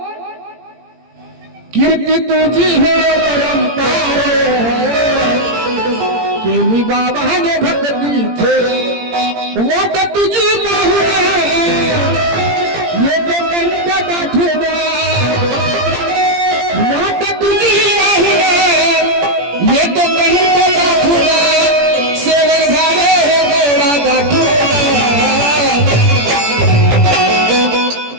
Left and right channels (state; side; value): late; left; 17 ms